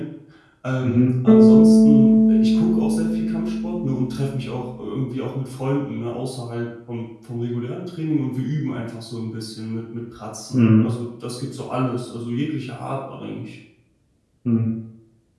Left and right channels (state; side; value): identical; both; correlation 1.00